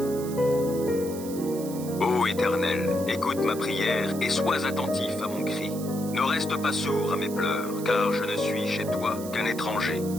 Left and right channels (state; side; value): noise; right; hiss, 14 dB below the sound